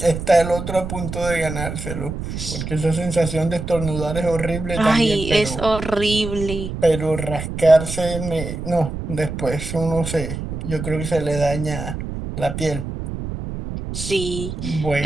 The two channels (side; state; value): right; noise; rumble, 6 dB below the sound